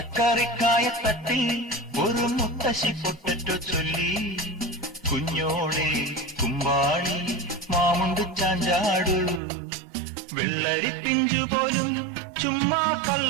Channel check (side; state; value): left; drops out; at 9.4 s